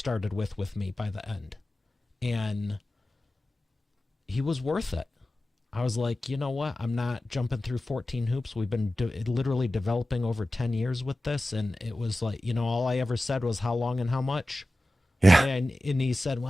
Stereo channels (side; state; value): both; normal; correlation 0.95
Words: with me by the end, and he was worth it. I was like, you know what? I'm not jumping through 14 hoops. We've been literally developing over 10 years with this, and it was like, all I ever said was how long and how much. Yeah. And he said,